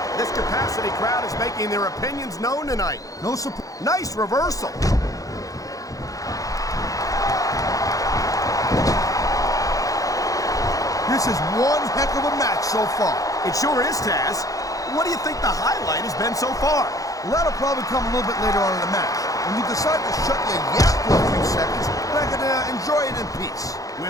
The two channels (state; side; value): late; right; 0.17 ms